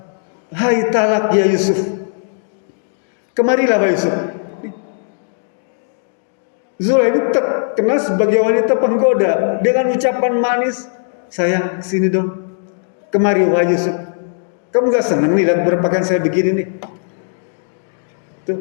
hai talak ya Yusuf. Kemarilah Pak Yusuf. Zulaikha ini terkenal sebagai wanita penggoda dengan ucapan manis, sayang sini dong, kemari Pak Yusuf. Kamu gak senang nih lihat berpakaian saya begini nih?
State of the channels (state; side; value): silent; right; digital silence